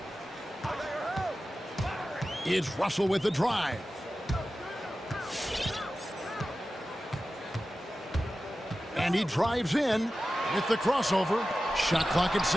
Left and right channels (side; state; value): both; normal; correlation 0.94